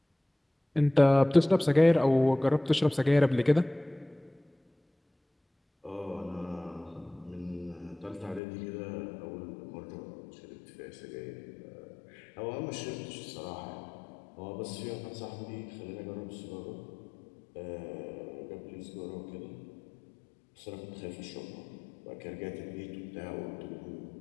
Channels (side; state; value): right; drops out; at 8.4 s